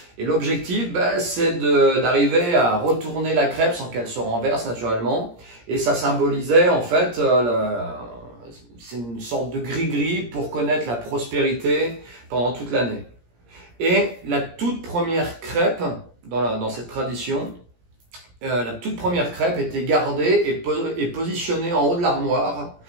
Et l'objectif, c'est d'arriver à retourner la crêpe sans qu'elle se renverse naturellement. Et ça symbolisait, en fait, c'est une sorte de gris-gris pour connaître la prospérité pendant toute l'année. Et la toute première crêpe, dans cette tradition, la toute première crêpe était gardée et positionnée en haut de l'armoire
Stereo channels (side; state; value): left; late; 17 ms